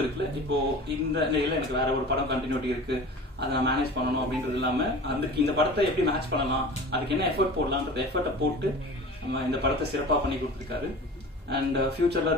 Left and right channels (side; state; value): both; normal; correlation 0.38